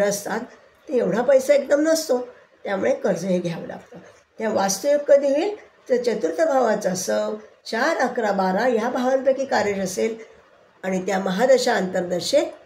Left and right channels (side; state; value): both; identical; correlation 1.00